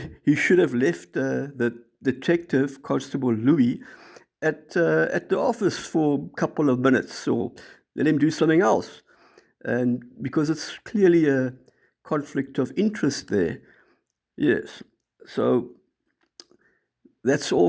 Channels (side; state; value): both; identical; correlation 1.00